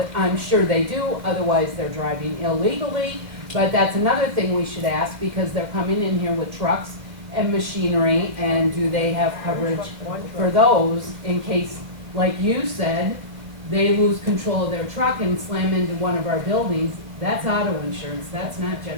I'm sure they do, otherwise they're driving illegally, but that's another thing we should ask, because they're coming in here with trucks and machinery, and do they have coverage for those in case, like you said, they lose control of their truck and slam into one of our buildings? That's auto insurance, that's not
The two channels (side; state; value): left; late; 2.1 ms